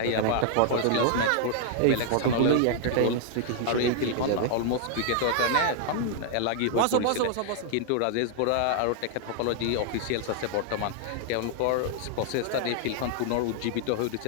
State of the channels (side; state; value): both; different; correlation 0.00